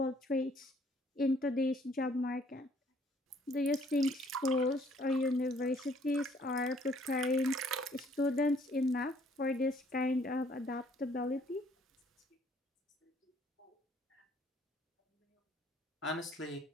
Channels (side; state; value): both; normal; correlation 0.62